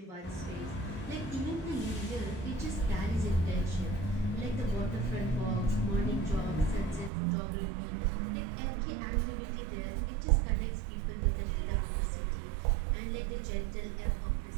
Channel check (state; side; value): drops out; left; at 7.1 s